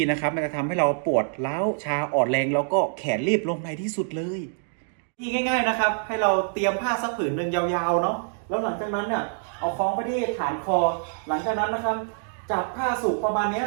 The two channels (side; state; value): left; silent; digital silence